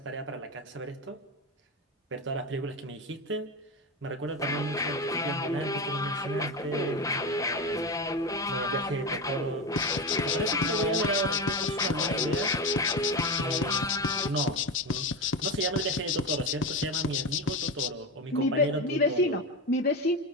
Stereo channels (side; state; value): both; normal; correlation 0.19